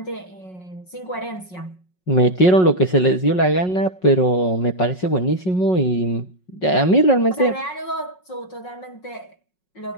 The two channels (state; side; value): late; right; 5.4 ms